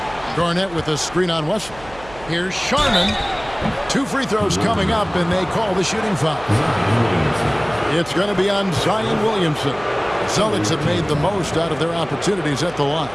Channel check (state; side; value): noise; right; hum, 19 dB below the sound